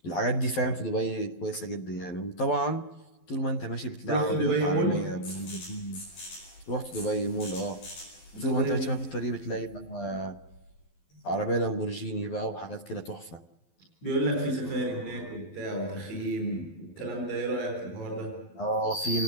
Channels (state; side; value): late; right; 12 ms